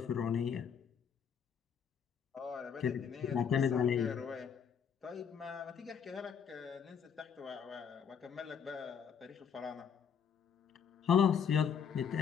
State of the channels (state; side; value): quieter; right; 7.4 dB